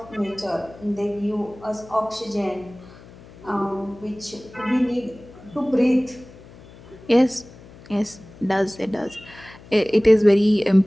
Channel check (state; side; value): noise; left; hum, 21 dB below the sound